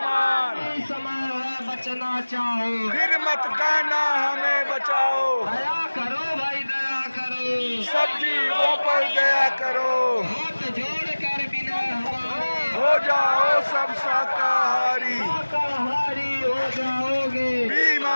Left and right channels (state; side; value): inverted; both; correlation -1.00